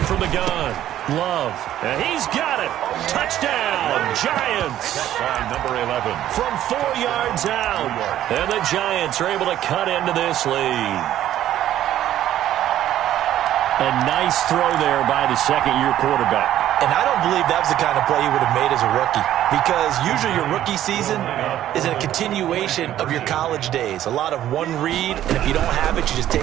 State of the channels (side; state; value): left; quieter; 12.3 dB